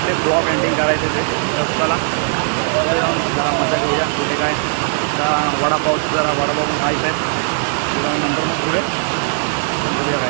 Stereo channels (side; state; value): left; silent; 62 dB below the other